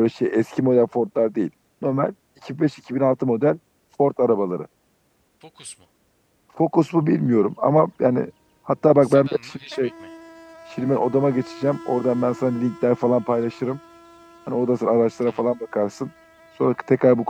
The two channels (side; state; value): both; identical; correlation 1.00